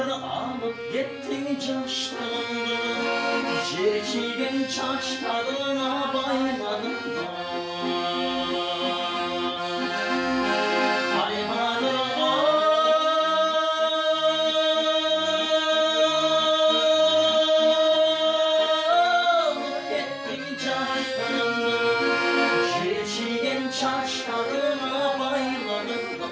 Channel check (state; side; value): identical; both; correlation 1.00